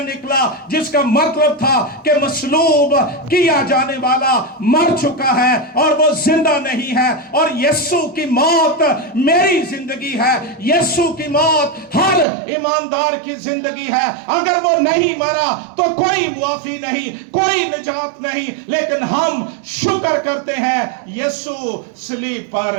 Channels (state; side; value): drops out; left; at 12.2 s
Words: जिसका मतलब था कि मसलूब किया जाने वाला मर चुका है और वो जिंदा नहीं है। और यीशु की मौत मेरी जिंदगी है, यीशु की मौत हर ईमानदार की जिंदगी है। अगर वो नहीं मरा तो कोई मुआफी नहीं, कोई निजात नहीं, लेकिन हम शुक्र करते हैं यीशु सलीब